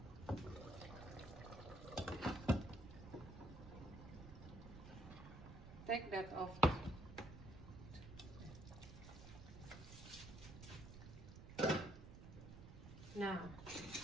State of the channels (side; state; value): right; noise; rumble, 12 dB below the sound